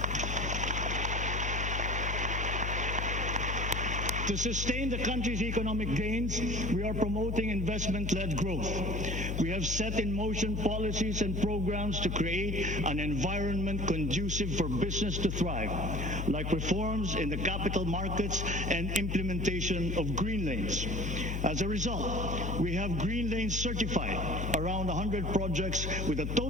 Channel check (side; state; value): left; noise; hum, 1 dB below the sound